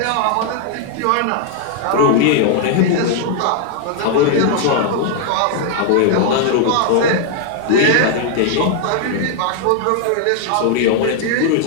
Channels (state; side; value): different; both; correlation 0.00